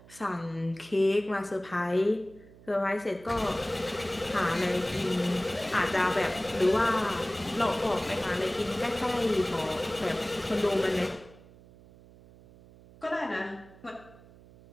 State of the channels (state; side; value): noise; right; hum, 23 dB below the sound